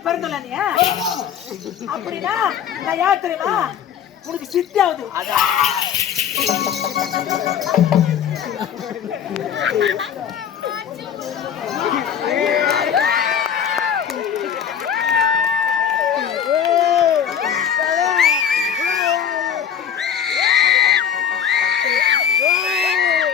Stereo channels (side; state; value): right; quieter; 8.5 dB